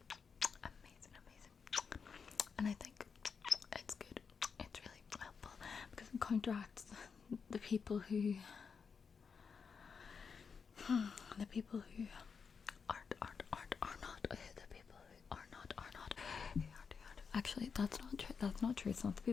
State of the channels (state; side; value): quieter; right; 5.8 dB